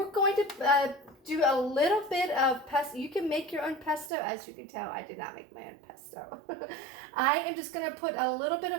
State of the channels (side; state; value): left; drops out; at 4.1 s